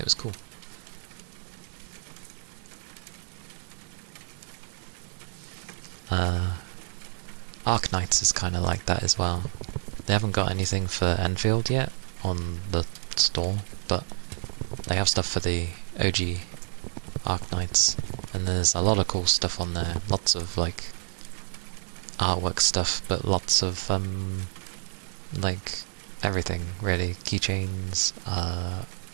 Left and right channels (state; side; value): silent; left; digital silence